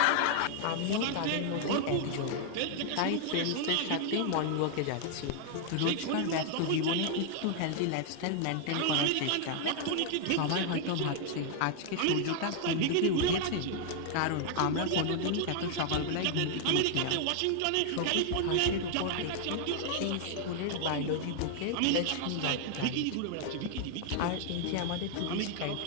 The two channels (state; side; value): different; both; correlation 0.00